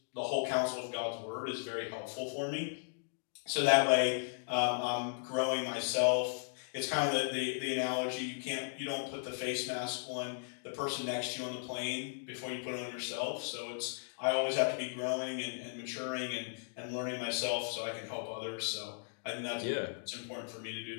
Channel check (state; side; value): silent; right; digital silence